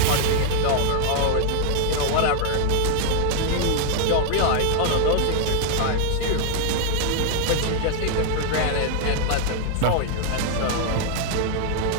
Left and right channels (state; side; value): different; both; correlation 0.00